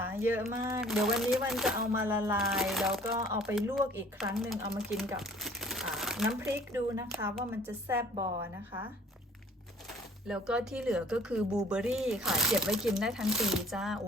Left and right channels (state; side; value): normal; both; correlation 0.54